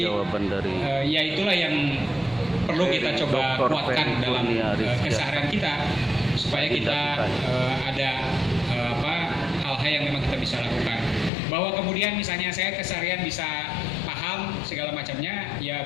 Jawaban dari ya itulah yang perlu kita coba Dr. kuatkan Ferry dalam Kurnia Rizky. keseharian kita supaya kita ada hal-hal yang memang kita bisa lakukan. Bahwa kemudian misalnya saya keseharian bisa paham segala macamnya, ya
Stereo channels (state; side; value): drops out; right; at 11.3 s